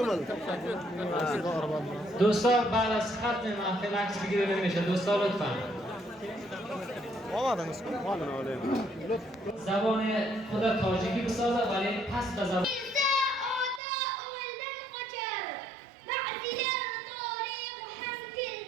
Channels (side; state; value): left; drops out; at 13.8 s